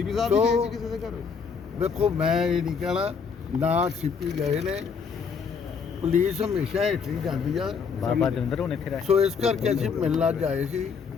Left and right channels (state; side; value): quieter; right; 5.9 dB